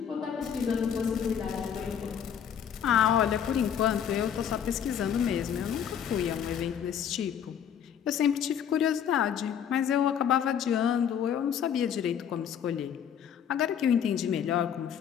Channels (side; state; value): right; quieter; 8.6 dB